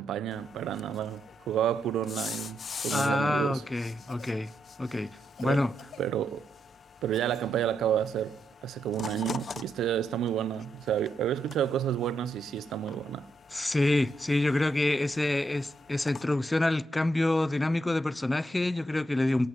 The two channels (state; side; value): normal; both; correlation 0.81